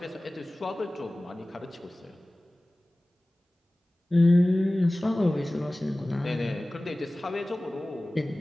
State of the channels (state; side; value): normal; both; correlation 0.98